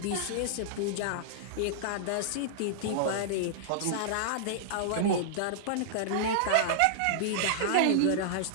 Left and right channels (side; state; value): both; different; correlation -0.01